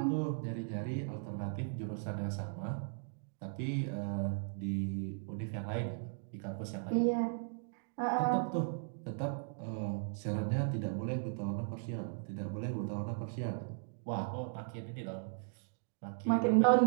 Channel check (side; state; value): left; silent; digital silence